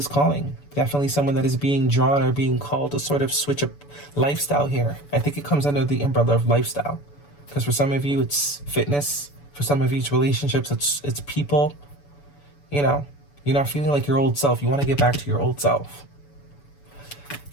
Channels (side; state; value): right; late; 7.0 ms